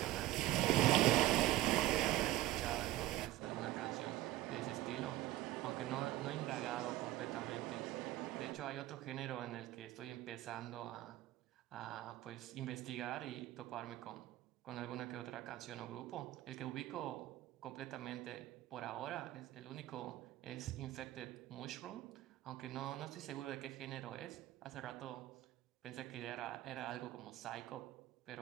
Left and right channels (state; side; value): quieter; left; 15.6 dB